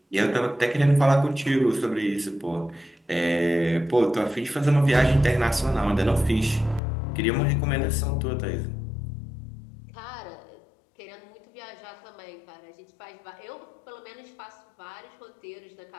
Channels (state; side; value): drops out; right; at 6.8 s